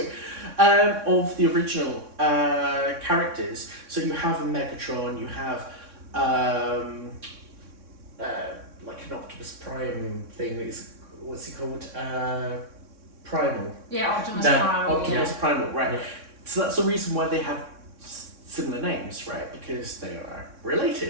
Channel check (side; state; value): left; late; 3.6 ms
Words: Of the original characters. So you have a Megatron, you have like an Optimus Prime thing. What's he called? Primal. Yeah, Optimus No, Primal. Optimus Primal, right? Yeah. So that's the reason why they have similar names, right? Because they are